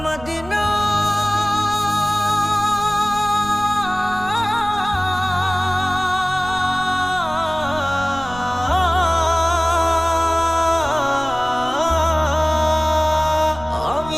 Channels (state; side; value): noise; right; rumble, 16 dB below the sound